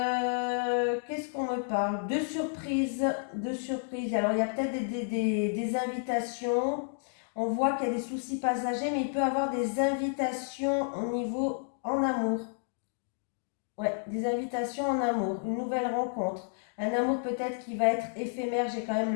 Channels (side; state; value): right; silent; digital silence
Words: qu'on me parle? De surprises, de surprises. Alors il y a peut-être des invitations. On voit qu'il y a des soucis passagers, mais il peut y avoir des invitations au niveau en amour. Ouais, des invitations en amour, une nouvelle rencontre. Un amour peut-être qui va être éphémère, j'ai quand même